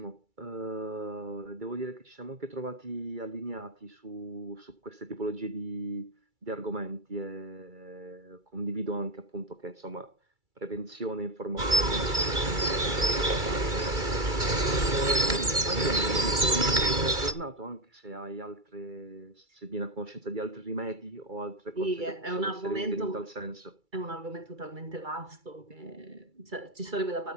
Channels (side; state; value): left; late; 2.3 ms